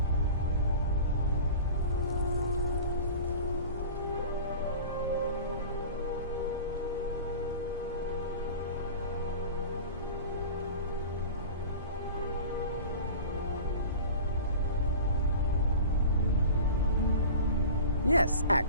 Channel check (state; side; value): inverted; both; correlation -0.36